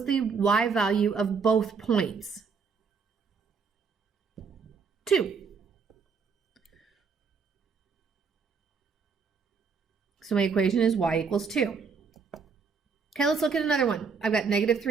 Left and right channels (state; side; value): quieter; left; 5.5 dB